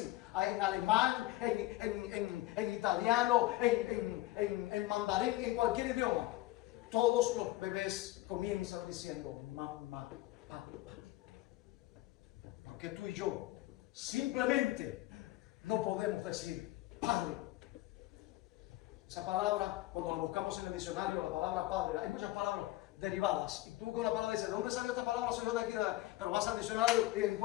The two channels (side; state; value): right; quieter; 17.2 dB